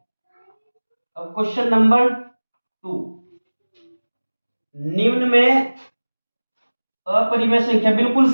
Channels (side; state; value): both; inverted; correlation -1.00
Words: अब क्वेश्चन नंबर 2, निम्न में अपरिमेय संख्या बिल्कुल